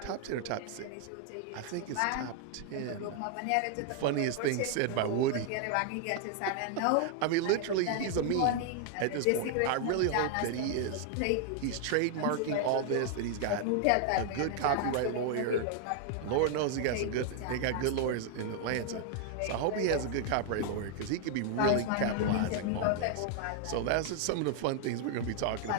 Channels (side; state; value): both; different; correlation 0.00